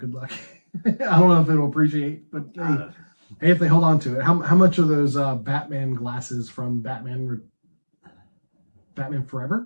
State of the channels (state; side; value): inverted; both; correlation -1.00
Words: luck. I don't know if it'll appreciate, but hey, if they hold on to it. How much are those Batman glasses from Batman